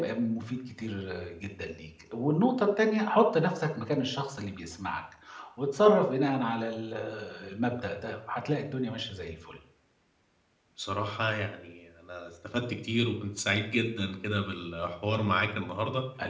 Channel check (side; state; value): both; identical; correlation 1.00